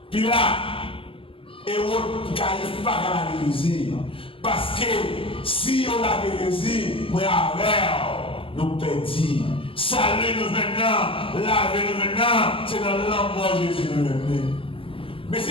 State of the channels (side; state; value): right; late; 0.26 ms